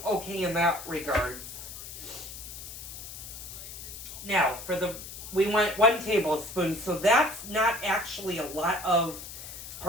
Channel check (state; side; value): noise; left; hiss, 11 dB below the sound